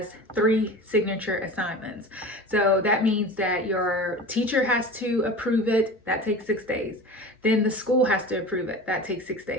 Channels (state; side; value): normal; both; correlation 0.35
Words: 3 signature assignments. So that means that your teacher has to approve it, that takes 6 days. Then the school has to approve it, that takes 6